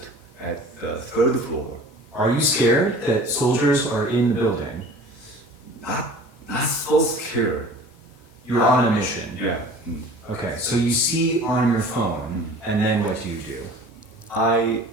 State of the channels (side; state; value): both; normal; correlation 0.43